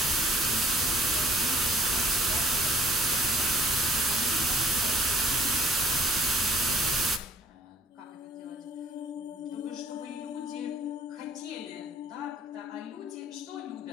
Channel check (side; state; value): both; normal; correlation 0.61